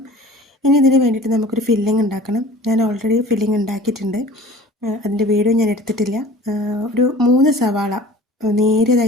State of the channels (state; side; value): normal; both; correlation 0.43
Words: ഇനി ഇതിന് വേണ്ടിയിട്ട് നമുക്കൊരു ഫില്ലിംഗ് ഉണ്ടാക്കണം. ഞാൻ ഓൾറെഡി ഫില്ലിംഗ് ഉണ്ടാക്കിയിട്ടുണ്ട്, അതിൻ്റെ വീഡിയോ ഞാൻ എടുത്തിട്ടില്ല. ഒരു 3 സവാള